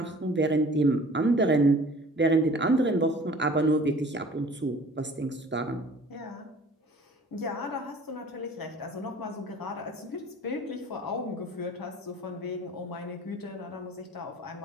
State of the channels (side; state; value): both; normal; correlation 0.48